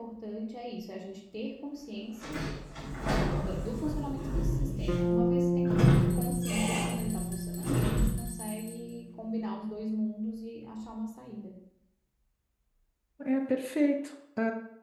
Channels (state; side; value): identical; both; correlation 1.00